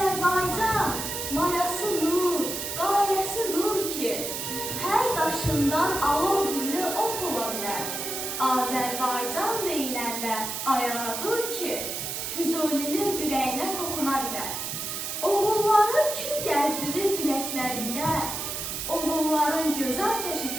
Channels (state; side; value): noise; right; hiss, 4 dB below the sound